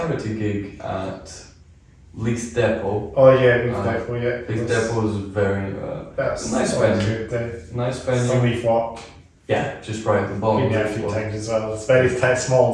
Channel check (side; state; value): both; identical; correlation 1.00